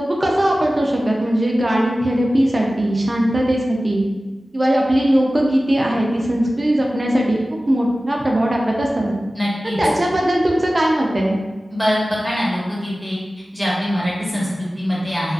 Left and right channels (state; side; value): normal; both; correlation 0.96